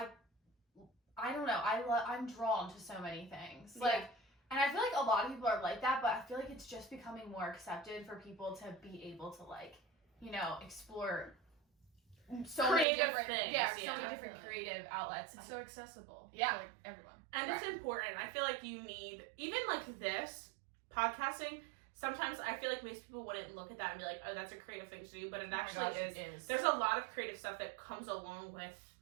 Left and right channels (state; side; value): drops out; left; at 12.9 s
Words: don't know. I'm drawn to so many things. Like, and I feel like a lot of people are like that, but I feel like it's just becoming more accepted for people to be able to like, you know, explore so creative many different things. So many different creative outlets. It's so accessible. Yeah. To, like everyone. And it's important. I feel like you need, even like this, podcasting, sometimes I feel like most people wouldn't look at that and be like, oh, that's a creative thing to do, but it actually is. There's a lot of creative stuff that comes along with